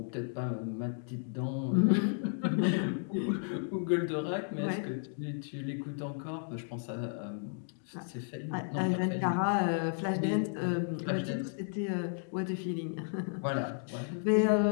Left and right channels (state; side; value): silent; right; digital silence